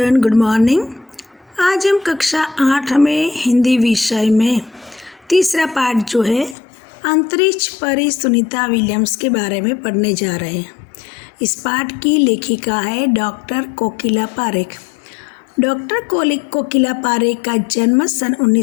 good morning. आज हम कक्षा 8 में हिंदी विषय में तीसरा पाठ जो है अंतरिक्ष परी सुनीता विलियम्स के बारे में पढ़ने जा रहे हैं। इस पाठ की लेखिका है डॉक्टर कोकिला पारेख। डॉक्टर कोकिला पारेख का जन्म सन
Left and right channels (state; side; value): drops out; right; at 6.6 s